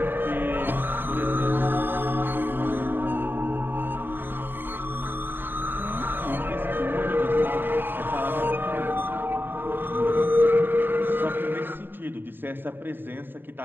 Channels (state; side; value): late; left; 0.096 ms